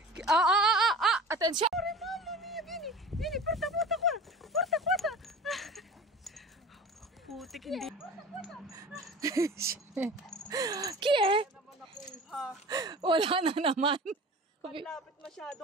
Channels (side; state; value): both; normal; correlation 0.37